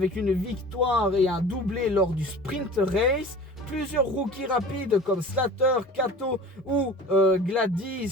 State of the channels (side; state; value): both; normal; correlation 0.41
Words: une victoire et un doublé lors du sprint race. Plusieurs rookies rapides comme Slater, Kato ou